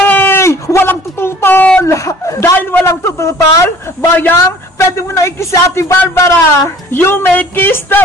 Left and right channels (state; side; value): normal; both; correlation 0.50